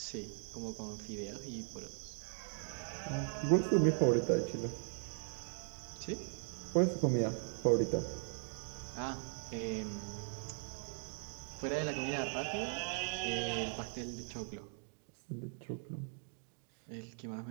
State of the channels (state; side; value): silent; left; 51 dB below the other